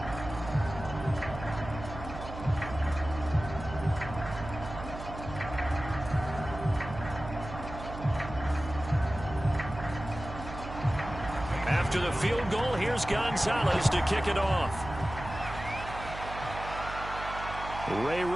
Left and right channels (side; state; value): right; noise; hum, 10 dB below the sound